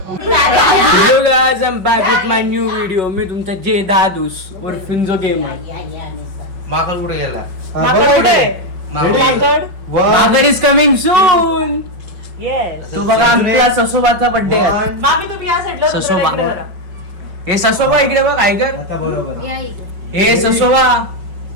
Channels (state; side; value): late; left; 5.4 ms